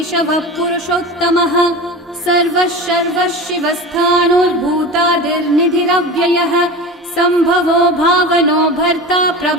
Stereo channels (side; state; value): both; normal; correlation 0.30